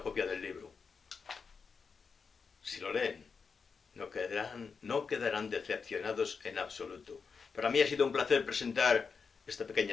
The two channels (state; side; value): quieter; right; 5.4 dB